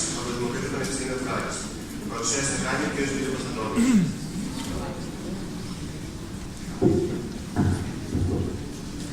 από το Δημοκρατικό Πανεπιστήμιο Χάρης. Παρουσίασε κάνει ο κ. Λιούκας Αντώνιος.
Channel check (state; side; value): identical; both; correlation 1.00